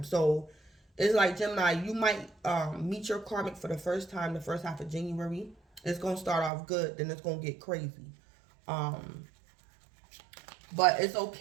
So it's like, Gemini, you might meet your karmic for the first time, the first half of January. It's going to start off good, then it's going to get crazy. But it's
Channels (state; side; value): drops out; left; at 6.5 s